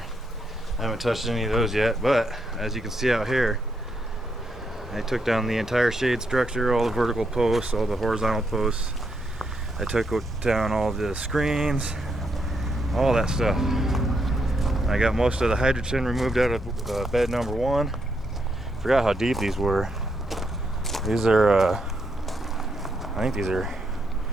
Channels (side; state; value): both; normal; correlation 0.79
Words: haven't touched any of those yet, but as you can see out here, I took down the entire shade structure, all the vertical posts, all the horizontal posts. I took down all the screens, all that stuff. I got most of the hydrogen removed out of bed number 1. Forgot how deep these were. These are, I think these are